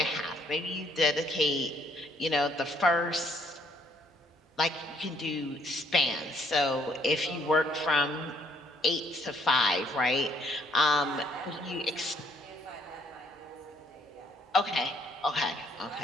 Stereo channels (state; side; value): normal; both; correlation 0.66